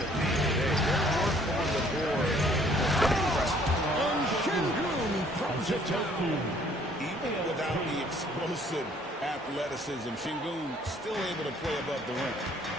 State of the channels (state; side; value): normal; both; correlation 0.60